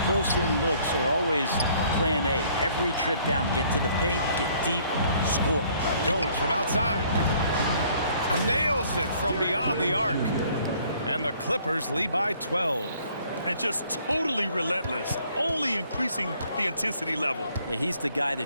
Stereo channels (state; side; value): inverted; both; correlation -0.61